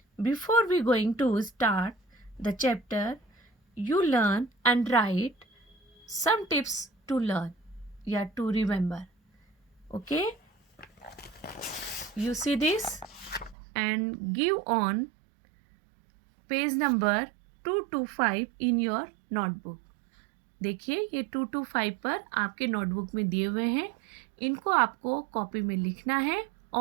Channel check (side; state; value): left; drops out; at 13.6 s